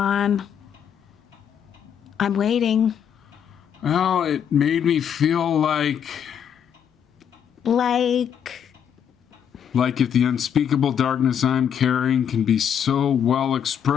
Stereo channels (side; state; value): right; quieter; 8.5 dB